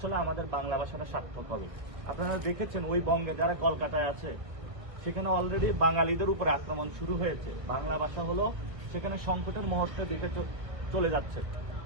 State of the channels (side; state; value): left; late; 1.6 ms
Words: আমাদের বাংলা ভাষাটা সার্থক হবে। আপনারা দেখেছেন ওই বঙ্গে যারা কলকাতায় আছে সেখানে অলরেডি বাঙালিদের উপর আক্রমণ শুরু হয়েছে। বাংলা ভাষা হলো সেখানে সংকটের মুহূর্তে দিকে চলে যাচ্ছে।